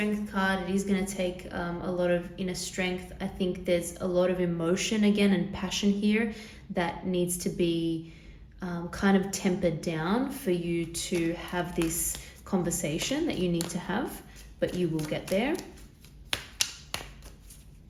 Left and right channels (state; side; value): identical; both; correlation 1.00